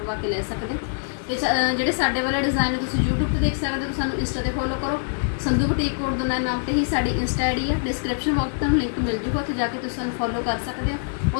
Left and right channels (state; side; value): silent; right; digital silence